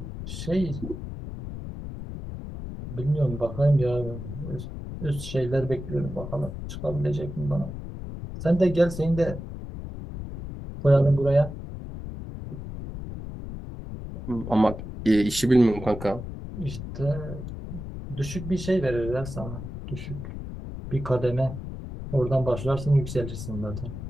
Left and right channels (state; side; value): noise; left; rumble, 9 dB below the sound